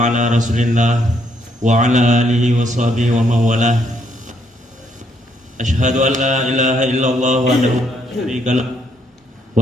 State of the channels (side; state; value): both; normal; correlation 0.72